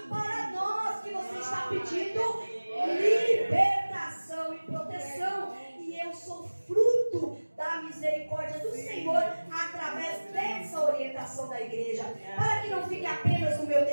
para nós que você está pedindo libertação e proteção. E eu sou fruto da misericórdia do Senhor através dessa orientação da igreja. Para que não fique apenas no meu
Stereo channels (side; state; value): both; inverted; correlation -1.00